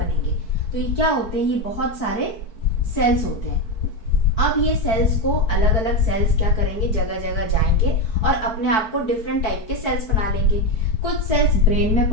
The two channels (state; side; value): late; right; 4.5 ms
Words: तो ये क्या होते हैं, ये बहुत सारे सेल्स होते हैं। अब ये सेल्स को अलग अलग सेल्स क्या करेंगे, जगह जगह जाएंगे और अपने आप को डिफरेंट टाइप के सेल्स बना लेंगे। कुछ सेल्स ब्रेन में